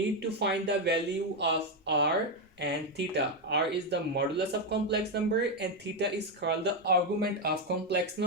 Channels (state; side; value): normal; both; correlation 0.06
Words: to find the value of r and theta. R is the modulus of complex number and theta is called the argument of complex